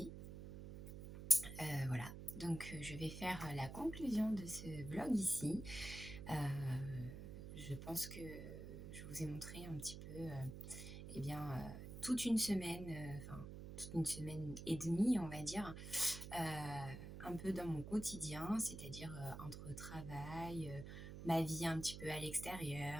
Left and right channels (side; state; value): right; noise; hum, 9 dB below the sound